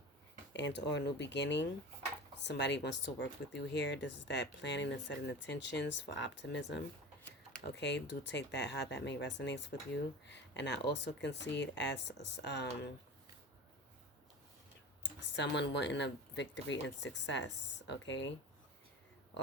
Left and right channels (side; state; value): both; normal; correlation 0.33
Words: And or a new beginning. Somebody wants to work with you here. This is that planning and setting intentions for optimism. Okay, do take that how that may resonate with you. And I also can see it as someone wanting a victory and success, okay?